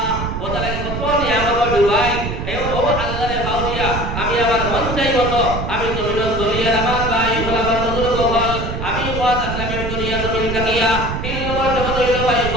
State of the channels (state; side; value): noise; right; rumble, 4 dB below the sound